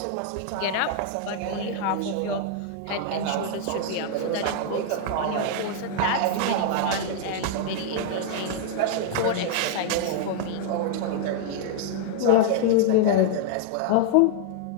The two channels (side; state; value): both; different; correlation 0.00